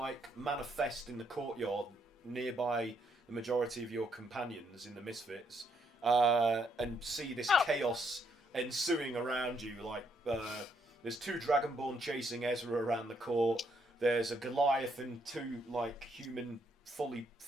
manifest in the courtyard nearby the majority of your companions in the Misfits, and see this chaos ensuing around you. There's 2 Dragonborn chasing Ezra around the court. There's a Goliath and 2 human, fully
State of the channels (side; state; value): both; normal; correlation 0.73